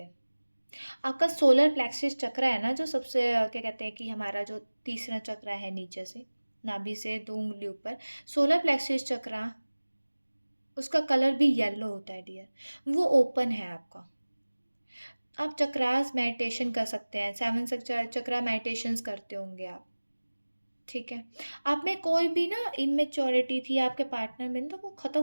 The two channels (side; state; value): both; inverted; correlation -1.00